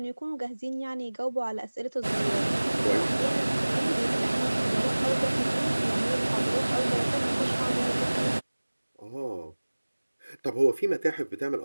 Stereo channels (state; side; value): inverted; both; correlation -1.00